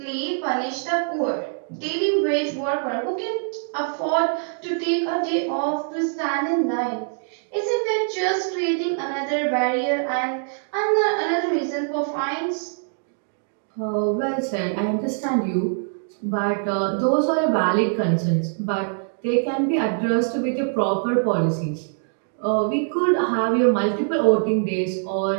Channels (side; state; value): left; silent; digital silence